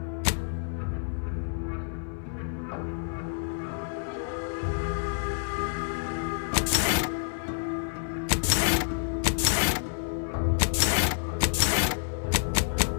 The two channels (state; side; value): silent; right; 59 dB below the other